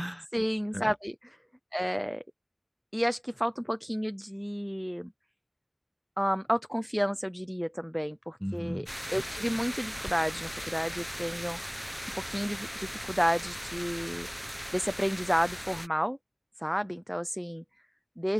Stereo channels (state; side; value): identical; both; correlation 1.00